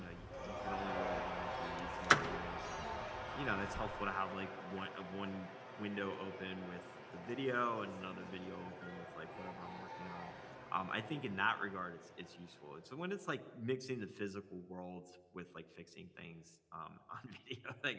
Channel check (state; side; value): identical; both; correlation 1.00